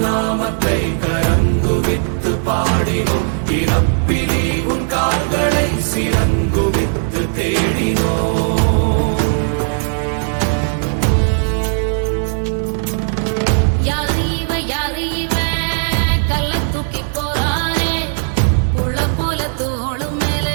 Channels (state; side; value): silent; left; digital silence